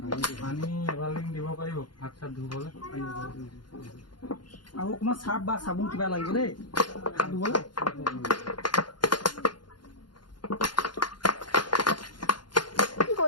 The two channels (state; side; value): late; right; 0.71 ms